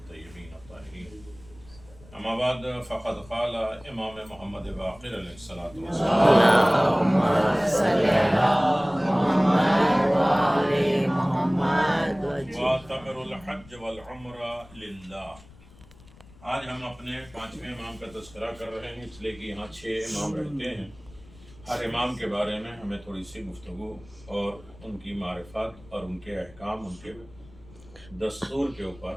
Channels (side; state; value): left; noise; rumble, 23 dB below the sound